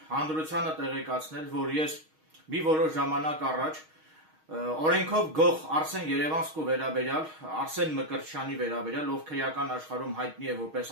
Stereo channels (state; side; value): late; left; 6.4 ms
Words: հանրությանը տեղեկացնել, որ ես մի որոշ ժամանակ առաջ օրենքով գող Արսեն Երևանցու վերաբերյալ, Արսեն Մկրտչյանի վերաբերյալ, ով քրեական աշխարհում հայտնի է որպես